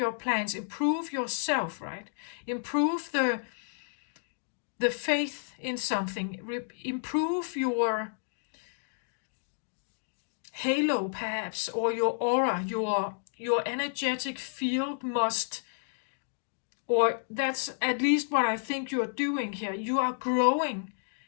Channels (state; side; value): silent; right; digital silence